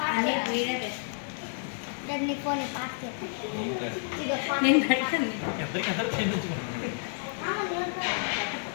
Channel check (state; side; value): silent; right; digital silence